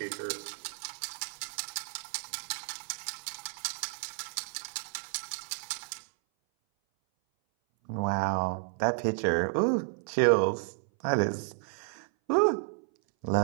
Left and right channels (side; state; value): left; silent; 57 dB below the other